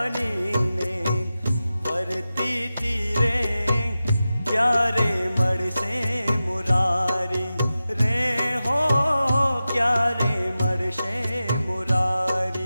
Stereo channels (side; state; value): both; inverted; correlation -0.93